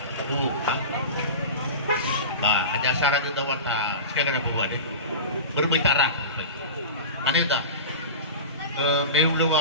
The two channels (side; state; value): both; inverted; correlation -0.30